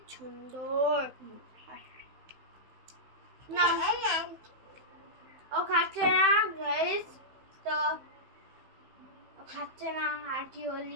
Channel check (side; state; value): left; late; 15 ms